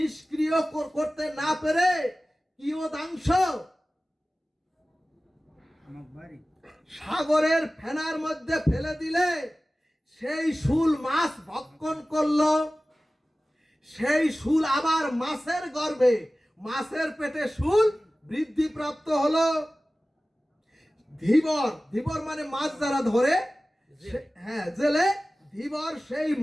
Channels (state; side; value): normal; both; correlation 0.97